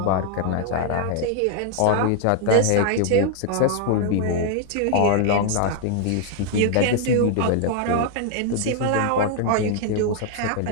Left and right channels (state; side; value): different; both; correlation 0.00